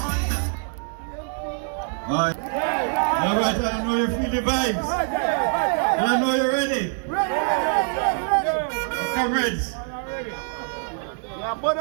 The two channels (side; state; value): left; silent; 55 dB below the other